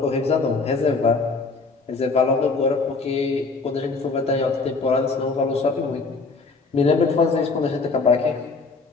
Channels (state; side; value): quieter; right; 4.1 dB